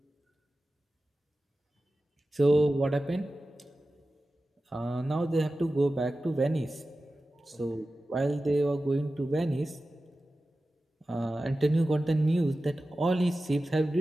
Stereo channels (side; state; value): both; normal; correlation 0.94